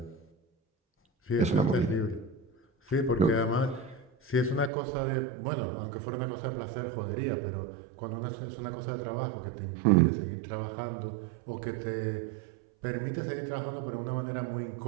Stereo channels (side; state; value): left; drops out; at 4.7 s